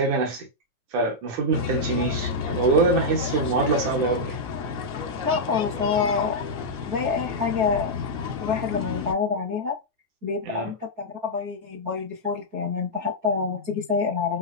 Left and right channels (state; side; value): late; left; 9.5 ms